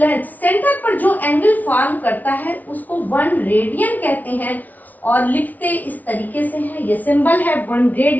सेंटर पर जो एंगल फॉर्म करता है उसको 1 रेडियन कहते हैं। और लिखते इस तरीके से है, ये सिंबल है 1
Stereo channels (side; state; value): right; late; 0.077 ms